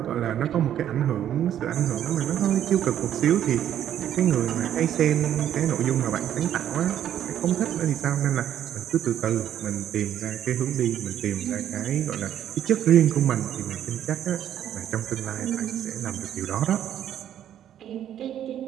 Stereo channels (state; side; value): quieter; left; 10.6 dB